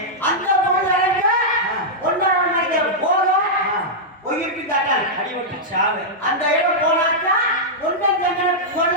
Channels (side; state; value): both; normal; correlation -0.09